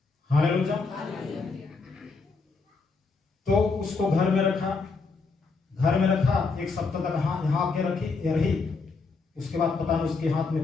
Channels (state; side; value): quieter; right; 4.3 dB